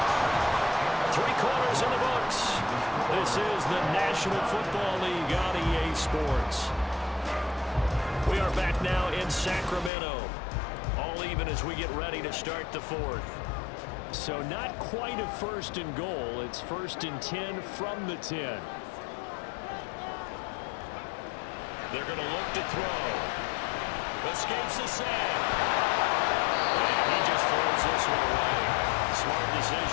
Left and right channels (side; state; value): right; drops out; at 9.9 s